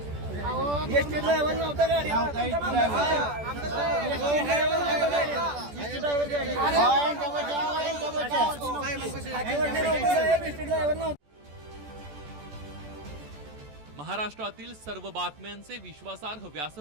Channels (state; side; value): late; left; 14 ms